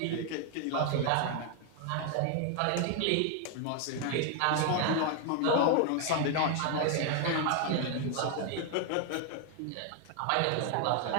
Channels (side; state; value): both; different; correlation 0.00